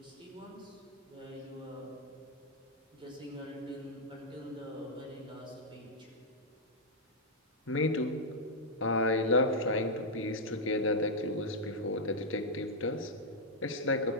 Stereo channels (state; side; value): normal; both; correlation -0.05